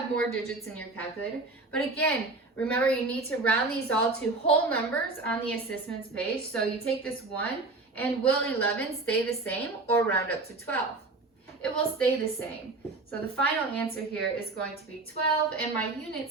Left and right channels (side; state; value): left; quieter; 3.4 dB